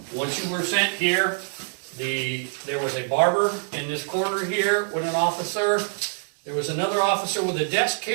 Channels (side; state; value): left; silent; digital silence